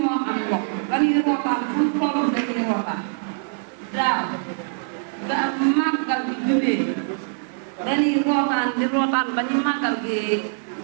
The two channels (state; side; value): silent; left; 63 dB below the other